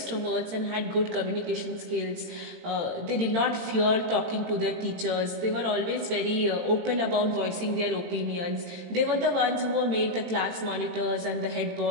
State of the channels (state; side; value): late; left; 18 ms